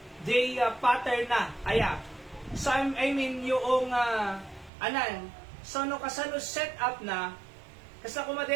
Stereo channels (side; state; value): left; drops out; at 4.7 s